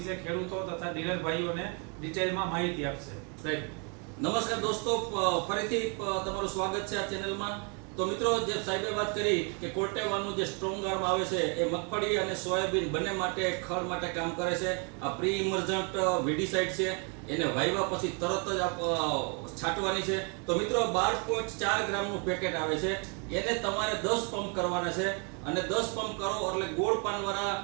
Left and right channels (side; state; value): left; quieter; 36.5 dB